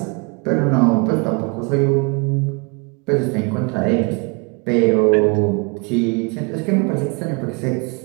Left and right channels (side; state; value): left; quieter; 31.3 dB